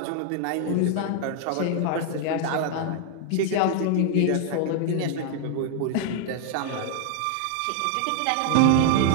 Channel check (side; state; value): both; different; correlation 0.00